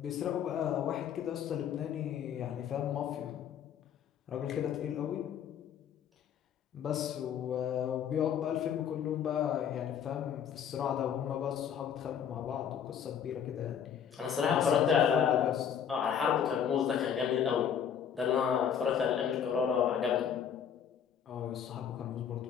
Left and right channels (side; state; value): right; quieter; 8.4 dB